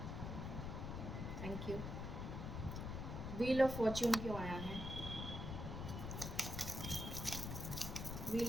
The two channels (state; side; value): noise; left; rumble, 4 dB below the sound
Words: Thank you. Wheel of Fortune क्यों आया है?